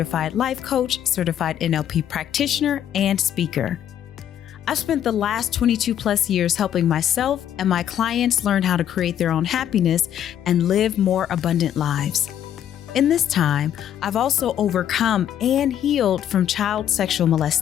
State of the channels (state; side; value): quieter; right; 10.3 dB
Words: life coach, certified NLP practitioner, and speaker. I've spent the last 22 plus years helping myself and my clients learn how to create their own happiness and live more abundant lives. In this time, I've also overcome and healed from child sexual